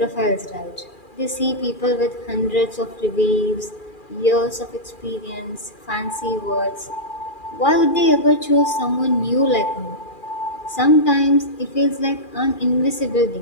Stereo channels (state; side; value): late; right; 2.4 ms